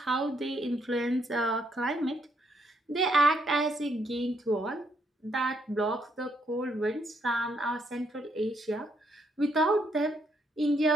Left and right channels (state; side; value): normal; both; correlation 0.73